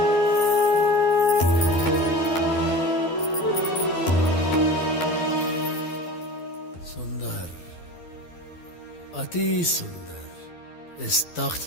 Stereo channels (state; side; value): late; right; 12 ms